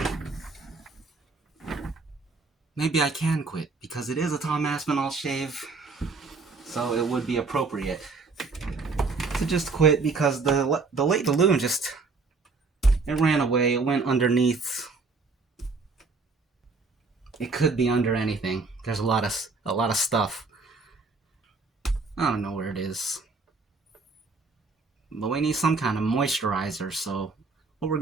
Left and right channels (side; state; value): left; quieter; 4.1 dB